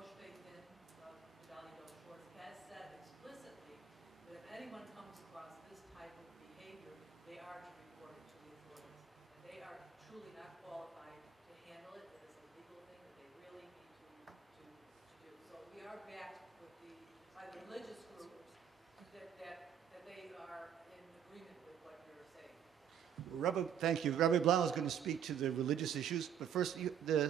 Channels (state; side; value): quieter; left; 8.6 dB